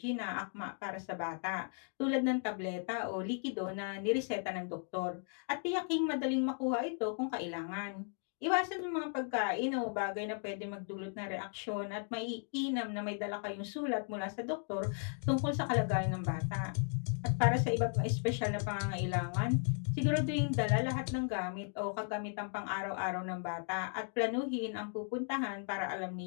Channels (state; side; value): silent; right; 54 dB below the other